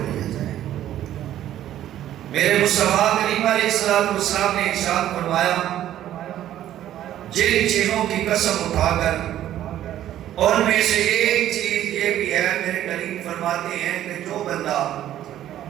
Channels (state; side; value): quieter; left; 12.2 dB